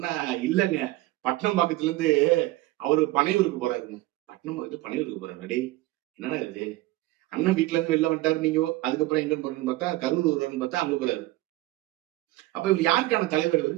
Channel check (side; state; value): left; quieter; 17.9 dB